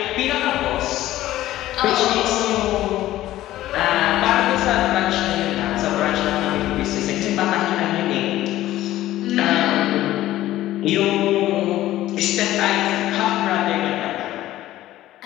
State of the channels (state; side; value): quieter; right; 14.7 dB